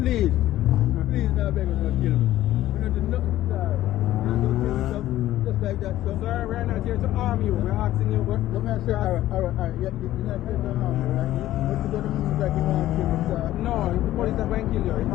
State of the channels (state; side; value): quieter; right; 14.3 dB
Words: now beg you not kill me. We don't do nothing, sir. We don't kill me, sir. Just like that, sir. Sir, we're not here to harm you. We're asking you. Let me say, alright. You're not here to harm me, right? But you don't mean that you want to kill me, sir. No, the police are going to kill you. I'm